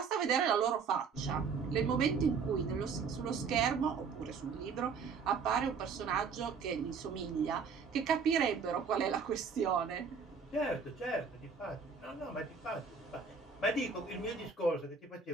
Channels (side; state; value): left; quieter; 5.5 dB